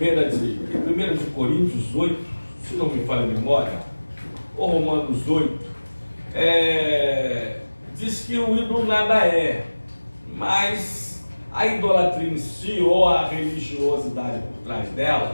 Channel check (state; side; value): inverted; both; correlation -1.00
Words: Coríntios 8, se não me falha a memória, ou Romanos 8, diz que o ídolo nada é, mas a idolatria em si, ou a religiosidade por trás